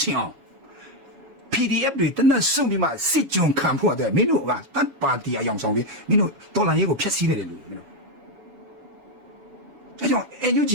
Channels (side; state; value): left; late; 7.2 ms